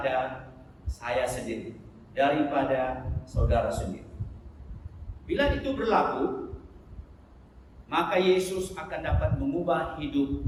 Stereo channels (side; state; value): both; identical; correlation 1.00